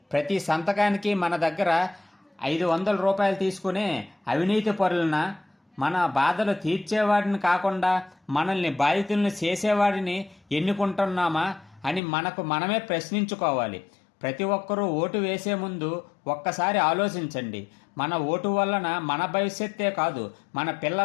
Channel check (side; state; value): right; drops out; at 12.0 s